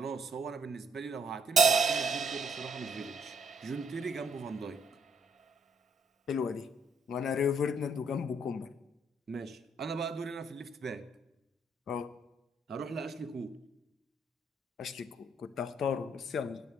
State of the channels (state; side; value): normal; both; correlation 0.69